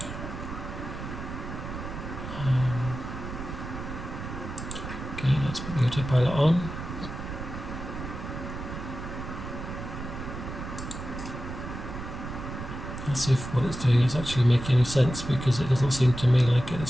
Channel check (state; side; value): noise; right; rumble, 8 dB below the sound